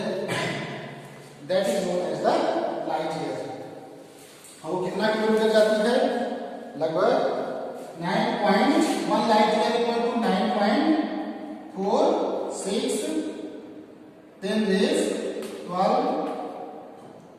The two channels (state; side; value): identical; both; correlation 1.00